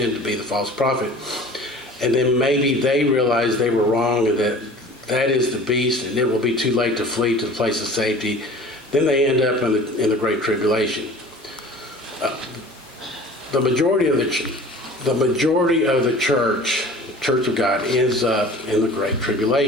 to be the false prophet. And then maybe they realize they were wrong and that is the beast and it will be too late to flee to the place of safety. Then they end up in the Great Tribulation. The majority of the Church of God, ends up in the Great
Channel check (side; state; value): both; normal; correlation 0.43